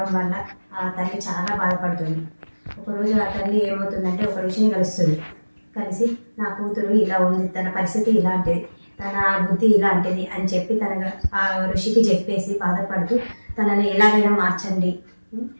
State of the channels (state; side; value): inverted; both; correlation -1.00